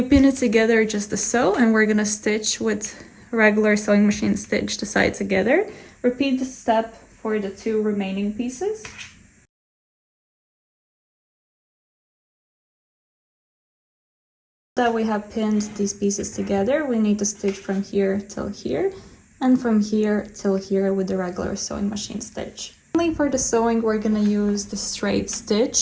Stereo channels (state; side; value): identical; both; correlation 1.00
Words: pin it together just to sew, and we're gonna stitch with regular sewing machine stitch the side together. Repeat the step for the 2 remaining pieces. That we have pinned these pieces together, we need to stitch from here till here and from here till here with the regular sewing machine stitch. Finally, for the sewing, we're gonna use the straight